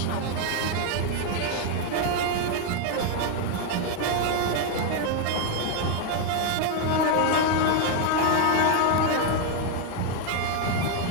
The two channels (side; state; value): both; different; correlation 0.01